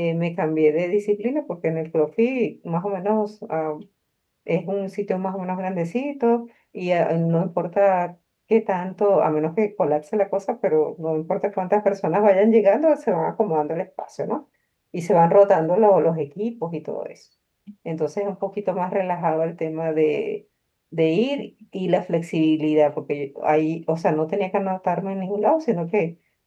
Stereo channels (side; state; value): both; identical; correlation 1.00